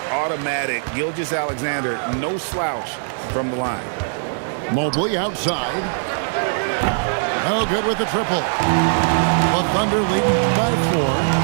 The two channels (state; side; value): silent; left; digital silence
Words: automatic. Gilgeous-Alexander, no slouch from the line. Mobley outside. No good with the triple. The Thunder leading by 4.